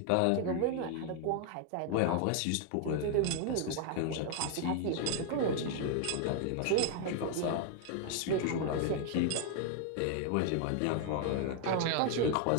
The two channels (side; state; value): both; different; correlation 0.00